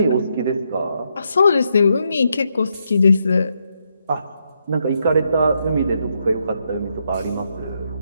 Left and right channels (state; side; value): inverted; both; correlation -0.79